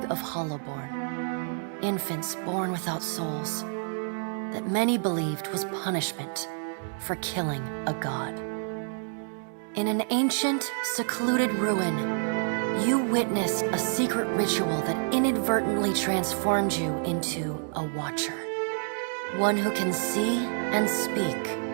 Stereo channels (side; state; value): left; silent; 58 dB below the other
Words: of hollowborn, infants born without souls, that many believed was punishment for killing a god. In an ancient, secluded ruin, you witnessed a secret ritual that inadvertently transformed you into a watcher. One who can see and speak